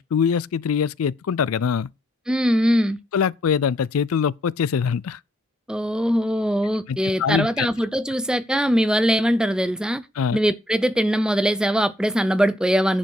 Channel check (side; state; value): both; normal; correlation 0.69